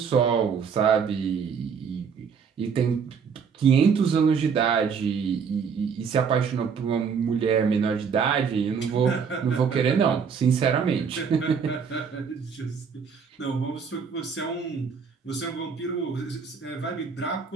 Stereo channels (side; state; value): left; quieter; 6.3 dB